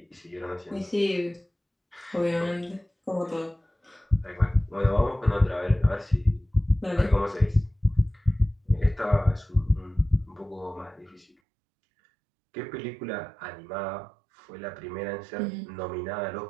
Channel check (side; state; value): left; drops out; at 11.2 s